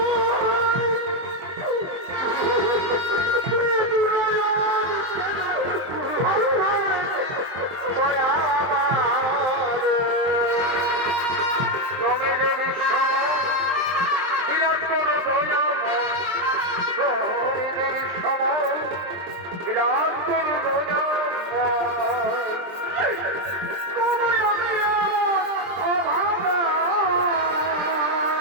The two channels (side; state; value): left; late; 23 ms